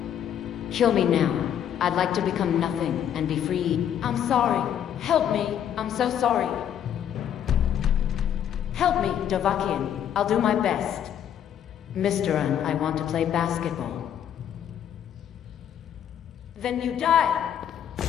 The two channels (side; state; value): right; quieter; 9.6 dB